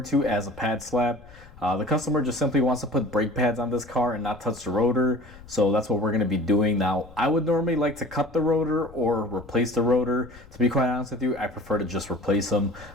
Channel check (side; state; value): left; noise; rumble, 21 dB below the sound